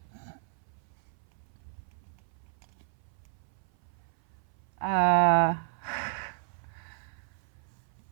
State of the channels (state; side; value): silent; left; 56 dB below the other